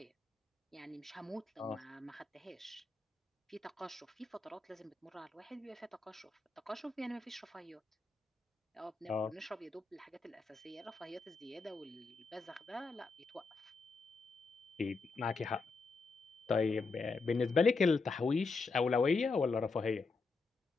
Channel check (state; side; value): quieter; right; 4.1 dB